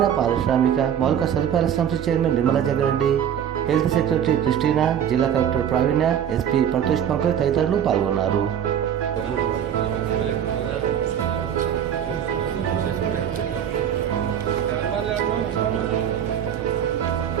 పారిశ్రామిక మౌలిక సదుపాయాల సంస్థ chairman Nimmala Jaggareddy, health secretary Christina, జిల్లా కలెక్టర్ ప్రావీణ్య, ఎస్పీ ప్రతోష్ పంకజ్ తదితరులు పాల్గొన్నారు.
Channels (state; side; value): quieter; left; 9.2 dB